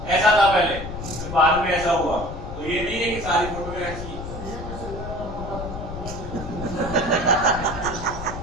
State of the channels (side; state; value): left; noise; rumble, 9 dB below the sound